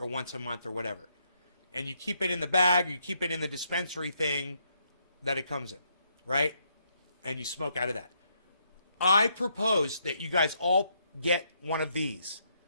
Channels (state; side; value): inverted; both; correlation -0.75